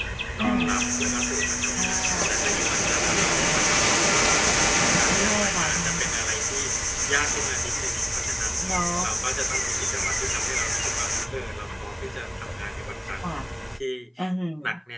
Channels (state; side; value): identical; both; correlation 1.00